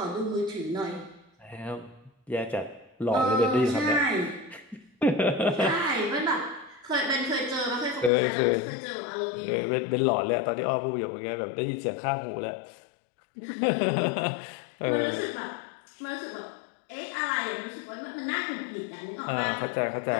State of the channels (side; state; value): right; drops out; at 8.1 s